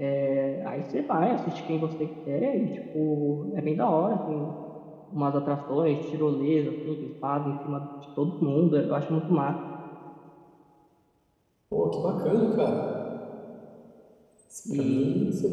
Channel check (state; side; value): identical; both; correlation 1.00